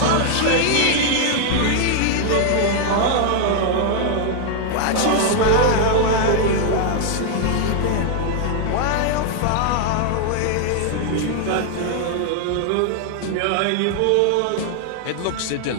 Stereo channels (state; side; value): different; both; correlation 0.00